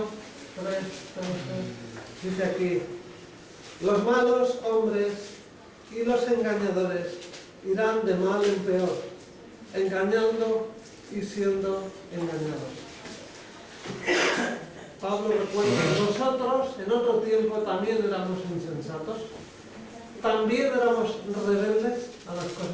3:13. Dice aquí, los malos hombres y los engañadores irán de mal en peor, engañando y siendo engañados. Pablo recuerda que nosotros en otro tiempo también éramos insensatos, también éramos rebeldes a las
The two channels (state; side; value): identical; both; correlation 1.00